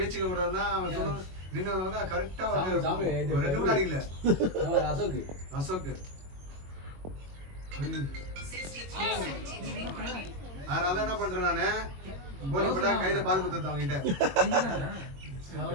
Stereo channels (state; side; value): late; left; 22 ms